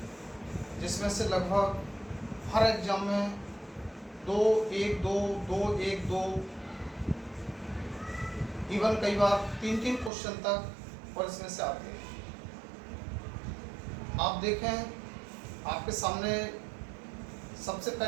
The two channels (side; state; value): left; drops out; at 10.1 s